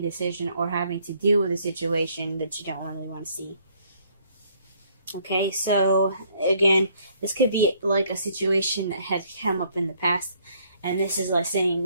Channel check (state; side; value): inverted; both; correlation -0.64